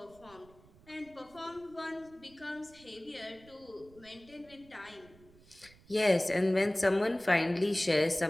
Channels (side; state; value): right; noise; rumble, 25 dB below the sound